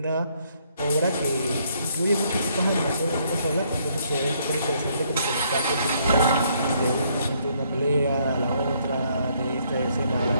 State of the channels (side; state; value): both; inverted; correlation -0.69